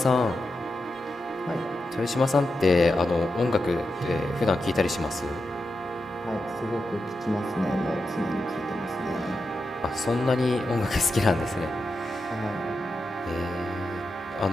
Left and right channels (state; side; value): normal; both; correlation 0.88